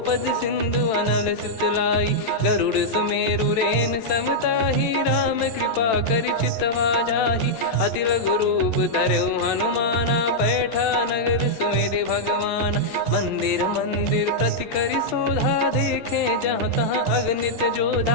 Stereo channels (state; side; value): late; right; 13 ms